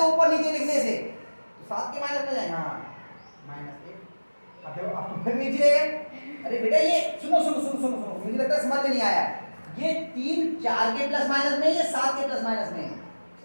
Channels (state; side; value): inverted; both; correlation -1.00